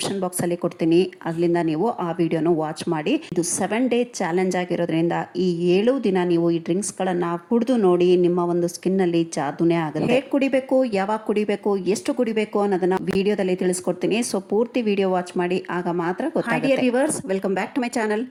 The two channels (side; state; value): both; identical; correlation 1.00